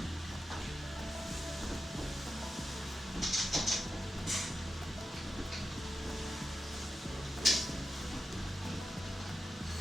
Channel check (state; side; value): normal; both; correlation 0.90